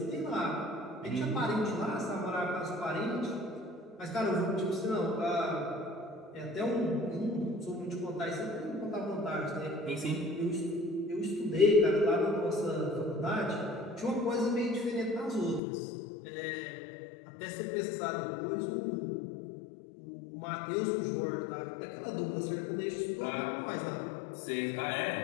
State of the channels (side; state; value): right; drops out; at 15.6 s